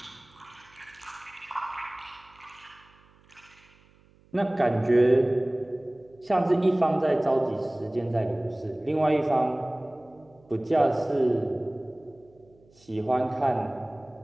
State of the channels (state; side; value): noise; right; hum, 30 dB below the sound